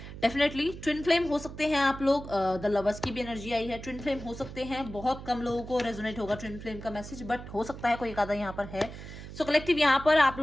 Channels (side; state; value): right; noise; hum, 12 dB below the sound